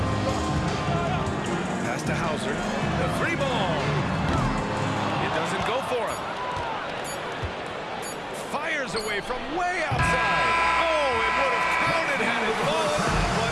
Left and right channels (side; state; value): both; identical; correlation 1.00